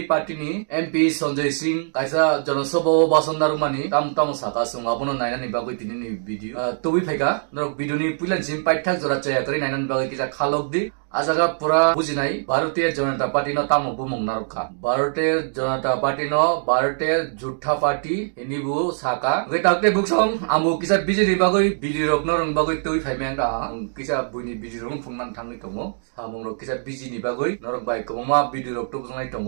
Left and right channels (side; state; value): left; silent; digital silence